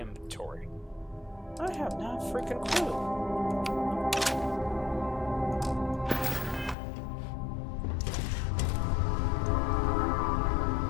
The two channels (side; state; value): right; drops out; at 6.8 s